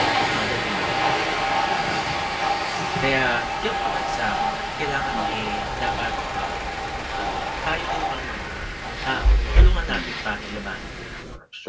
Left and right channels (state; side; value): identical; both; correlation 1.00